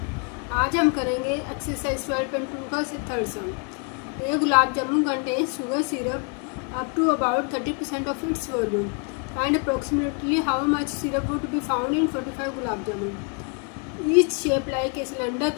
आज हम करेंगे exercise 12.2 का third sum. ये gulab jamun contain sugar syrup up to about 30% of its volume and approximately how much syrup would be found in 45 gulab jamun. Each shape like a cylinder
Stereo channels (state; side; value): quieter; right; 37.1 dB